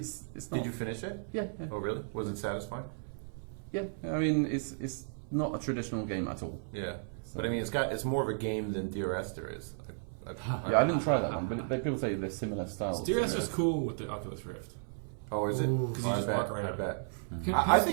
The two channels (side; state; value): left; silent; 55 dB below the other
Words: not. Did you finish it? Yeah, Oh, really? Was it satisfying? yeah. I mean, it's not a traditional game at all. Yeah. But I mean, it's more of a game than DRS there is. Yeah, I didn't try that one, but people say they're similar styles. Steer's just cool with the Oculus Rift. Oh, is it? Ooh. 'Cause you I just bet, walk around. I bet. Can I